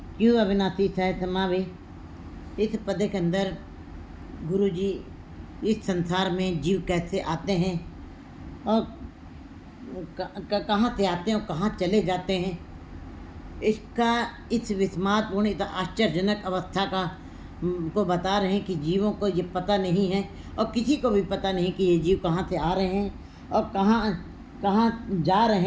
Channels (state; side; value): identical; both; correlation 1.00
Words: क्यों अविनाशी सह समावे। इस पद के अंदर गुरु जी इस संसार में जीव कैसे आते हैं और कहाँ से आते हैं और कहाँ चले जाते हैं, इसका इस विस्मातपूर्ण इतना आश्चर्यजनक अवस्था का को बता रहे हैं कि जीवों को ये पता नहीं है और किसी को भी पता नहीं कि ये जीव कहाँ से आ रहे हैं और कहाँ जा